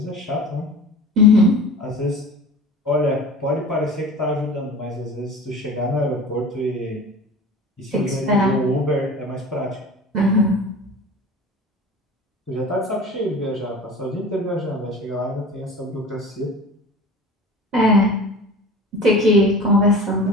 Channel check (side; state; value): both; normal; correlation 0.38